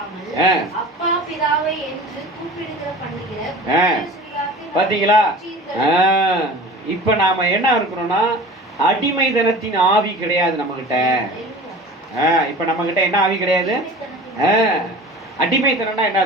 அப்பா பிதாவை என்று கூப்பிடுகிற பண்ணுகிற பாத்தீங்களா? இப்ப நாம என்ன இருக்கிறோம்னா அடிமைத்தனத்தின் ஆவி கிடையாது நம்ம கிட்ட. இப்ப நம்ம கிட்ட என்ன ஆவி கிடையாது? அடிமைத்தனம்னா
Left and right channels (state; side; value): normal; both; correlation 0.39